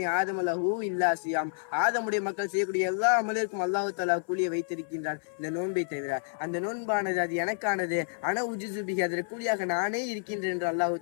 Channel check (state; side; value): silent; right; 58 dB below the other